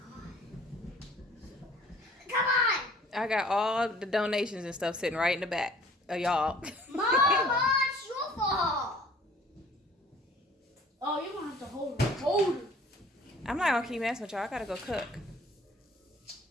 Come on. I got all the donations and stuff sitting right in the back of y'all. Mama, it's your fault. Oh, you're gonna have to hold it. Hold it. I'm not gonna keep messing with y'all. I gotta go cook.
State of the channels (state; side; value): normal; both; correlation 0.53